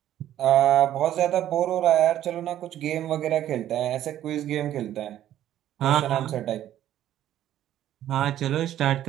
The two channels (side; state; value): left; quieter; 12.0 dB